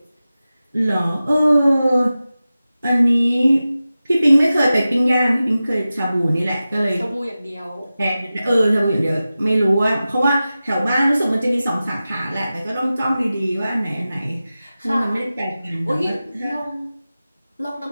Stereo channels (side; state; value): both; inverted; correlation -0.95